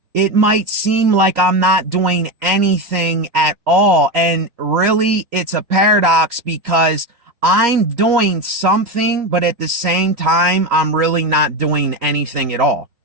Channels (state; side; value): late; left; 3.8 ms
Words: It might seem like I'm not doing anything at all. And really, it's a paradox because I'm doing something, but at the same time, I'm really not doing anything at all.